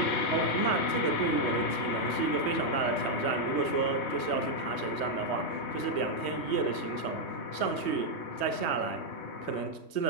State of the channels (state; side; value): late; right; 3.1 ms